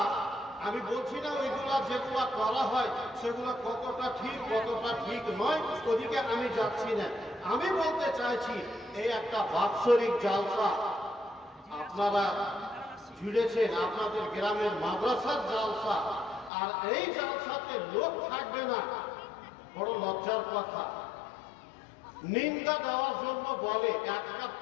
আমি বলছি না ওইগুলা যেগুলা করা হয় সেগুলা কতটা ঠিক কতটা ঠিক নয়, ওদিকে আমি যাচ্ছি না। আমি বলতে চাইছি এই একটা বাৎসরিক জালসা আপনারা জুড়েছেন, আপনাদের গ্রামের মাদ্রাসার জালসা, আর এই জালসাতে লোক থাকবে না, বড় লজ্জার কথা। নিন্দা দেওয়ার জন্য বলে 1 কাপ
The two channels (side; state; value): right; drops out; at 16.5 s